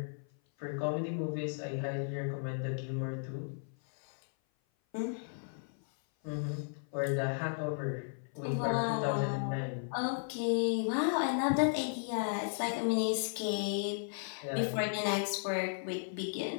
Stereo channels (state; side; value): silent; right; 55 dB below the other